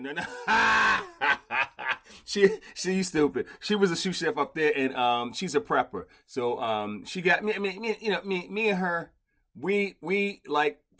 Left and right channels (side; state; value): both; identical; correlation 1.00